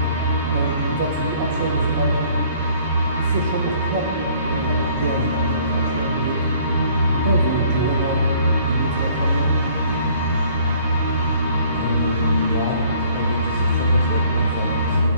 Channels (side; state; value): both; inverted; correlation -0.57